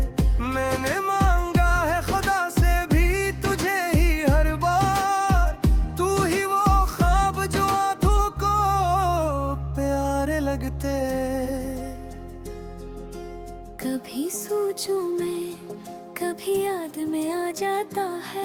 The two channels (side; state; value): both; identical; correlation 1.00